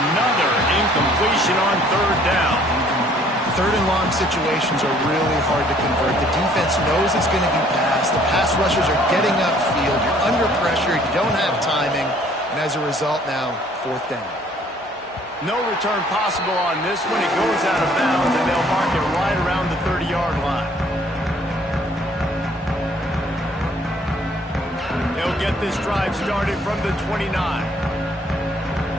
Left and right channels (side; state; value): both; normal; correlation 0.60